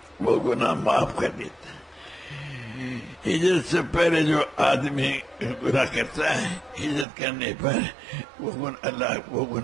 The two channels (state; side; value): drops out; left; at 7.1 s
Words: وہ گناہ معاف کر دیتا ہے. ہجرت سے پہلے جو آدمی گناہ کرتا ہے ہجرت کرنے پر اللہ وہ